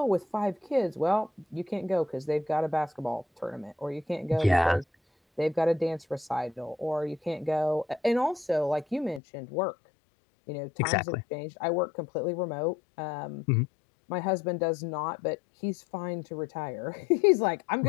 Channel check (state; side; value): drops out; right; at 9.2 s